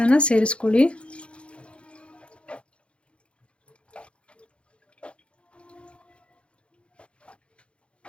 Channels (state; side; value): late; right; 0.058 ms